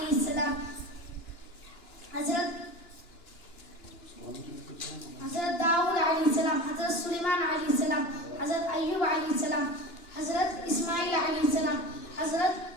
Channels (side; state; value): right; late; 2.9 ms